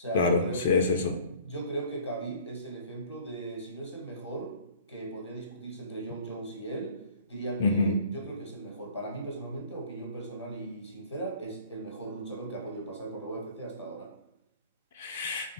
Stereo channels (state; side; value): inverted; both; correlation -0.49